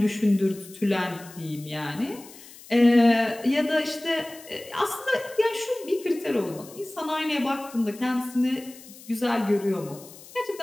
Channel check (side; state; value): left; noise; hiss, 19 dB below the sound